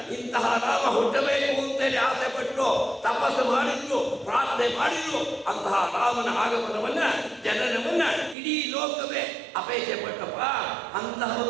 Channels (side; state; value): left; drops out; at 8.3 s